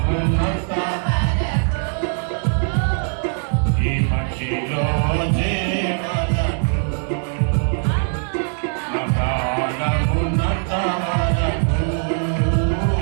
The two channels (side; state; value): left; silent; 56 dB below the other